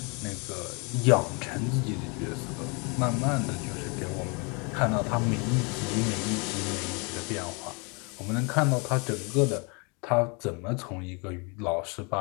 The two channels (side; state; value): right; quieter; 32.2 dB